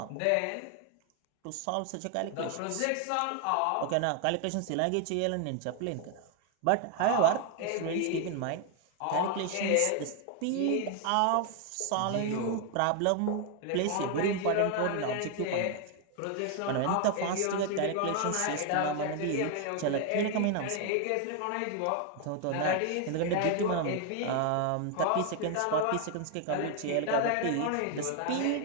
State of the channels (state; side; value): different; both; correlation 0.01